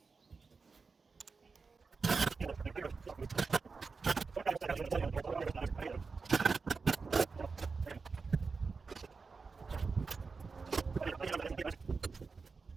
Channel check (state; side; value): quieter; left; 4.6 dB